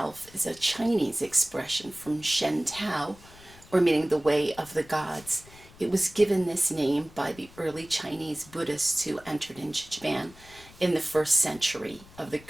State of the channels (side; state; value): left; noise; rumble, 22 dB below the sound